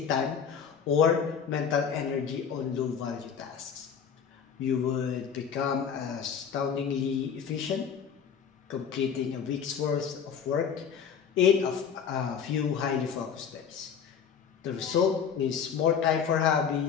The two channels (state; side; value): quieter; right; 7.2 dB